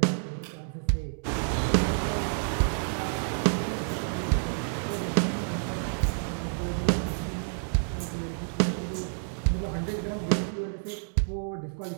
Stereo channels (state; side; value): silent; left; digital silence